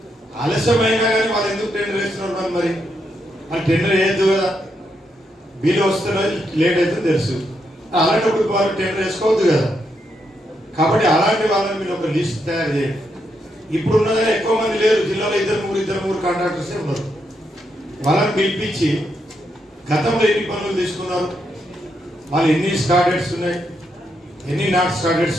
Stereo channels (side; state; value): both; normal; correlation 0.80